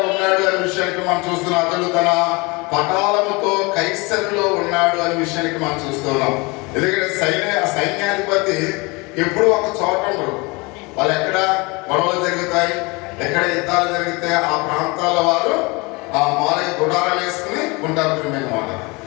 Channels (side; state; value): right; quieter; 26.5 dB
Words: ఉన్నాడు అనే విషయానికి మనం చూస్తున్నాం. అతడు తన పటాలముతో కైసరులో ఉన్నాడు అనే విషయానికి మనం చూస్తున్నాం. ఎందుకంటే సైన్యాధిపతి ఎప్పుడు ఒక చోట ఉండరు. వాళ్ళు ఎక్కడ గొడవలు జరుగుతాయి, ఎక్కడ యుద్ధాలు జరిగితే ఆ ప్రాంతాల వారు ఆ మాలయ గుడారాలు వేసుకుని ఉంటారు ప్రియమైన వాళ్ళు.